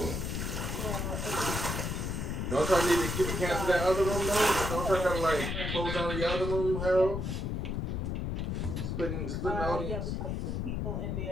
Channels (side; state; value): left; noise; rumble, 2 dB below the sound